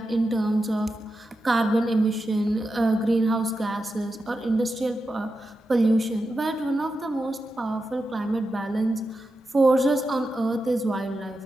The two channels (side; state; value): both; normal; correlation 0.89